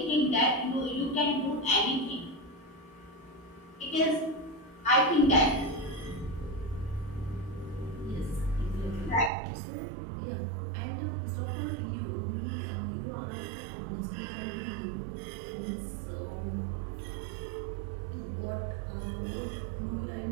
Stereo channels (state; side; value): drops out; left; at 9.3 s